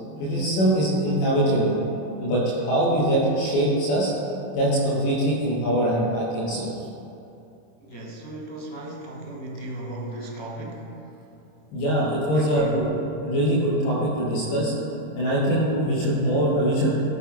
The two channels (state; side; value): late; right; 26 ms